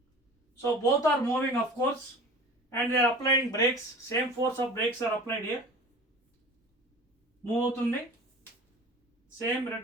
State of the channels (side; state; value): both; normal; correlation 0.40